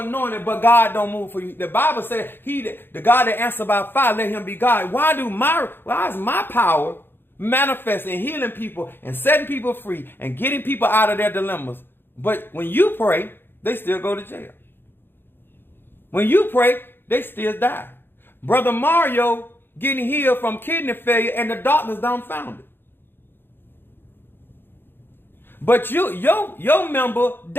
but God don't move for you? The Bible said, the God that answers by fire, let him be God. Why is my power manifest in healing people and setting people free and getting people out of their dilemmas? But when you pray, they still go to jail. When you pray, they still die. Brother Mario getting healed from kidney failure and the doctors dumbfounded. But your member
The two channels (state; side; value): late; right; 0.10 ms